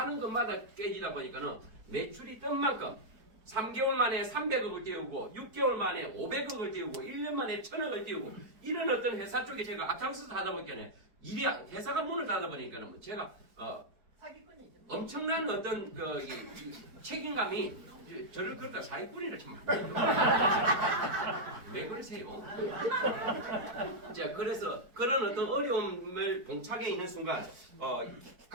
것마다 깨지다 보니까는 매출이 뜬 만큼 3개월 만에 300억을 띄우고 6개월 만에 500억을 띄우고 1년 만에 1000억을 띄우고 이런 어떤 회사 쪽에 제가 앞장서서 하다 보니까 일이 회사가 문을 닫아 보니까는 제가 사기꾼이죠. 엄청난 어떤 이 책임감이 저를 그렇다 사기꾼이라 참. 왜 그러세요? 자, 그래서 그런 어떤 어려움을 봉착해 있는 순간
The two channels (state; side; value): late; left; 4.6 ms